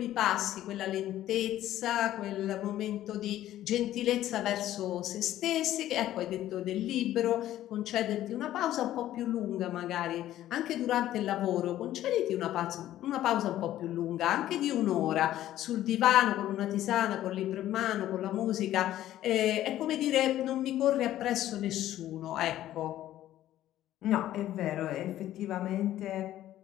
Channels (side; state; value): right; quieter; 13.2 dB